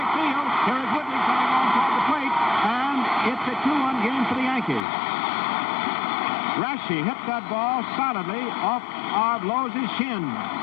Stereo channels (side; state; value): right; drops out; at 4.9 s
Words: field. Here is Woodley coming on toward the plate, and it's a 2-1 game for the Yankees. Raschi hit that ball solidly off of Lowe's shin.